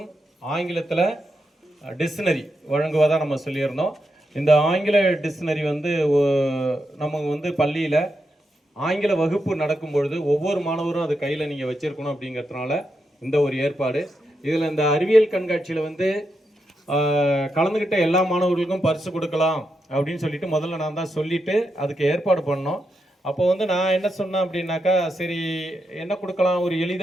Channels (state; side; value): normal; both; correlation 0.85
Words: ஆங்கிலத்தில் டிக்ஷனரி வழங்குவதாக நம்ம சொல்லியிருந்தோம். இந்த ஆங்கில டிக்ஷனரி நம்ம பள்ளியில் ஆங்கில வகுப்பு நடக்கும் பொழுது ஒவ்வொரு மாணவரும் அது கையில் நீங்கள் வச்சுருக்கணும் அப்படிங்கிறதுனால இந்த ஒரு ஏற்பாடு. இதில் இந்த அறிவியல் கண்காட்சியில் கலந்துக்கிட்ட எல்லா மாணவர்களுக்கும் பரிசு கொடுக்கலாம் அப்படின்னு சொல்லிட்டு முதல்ல நான் தான் சொல்லிவிட்டு அதுக்கு ஏற்பாடு பண்ணோம். அப்போ நான் என்ன சொன்னேன் அப்படின்னாக்கா, சரி என்ன கொடுக்கலாம், ஒரு